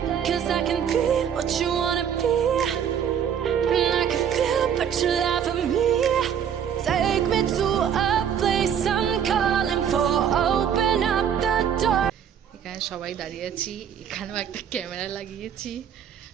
'Cause I can be what you wanna be. And I can feel but you laugh at me. Take me to a place I'm calling for. Open up the door. এখানে সবাই দাঁড়িয়ে আছি, এখানেও একটা camera লাগিয়েছি।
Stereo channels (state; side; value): quieter; left; 8.5 dB